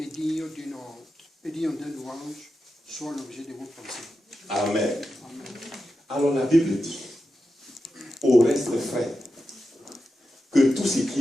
digne d'un louange, soit l'objet de vos pensées. Amen. Amen. Alors la Bible dit, au reste frère, que tout ce qui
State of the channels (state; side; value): normal; both; correlation 0.90